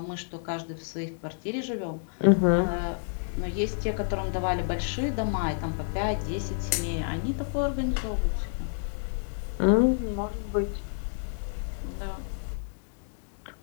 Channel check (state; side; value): silent; right; digital silence